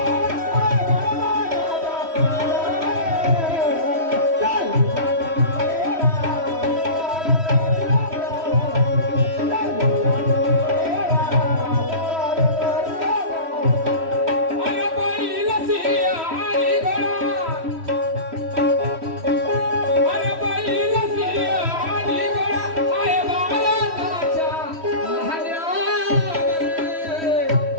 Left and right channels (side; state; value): left; late; 3.1 ms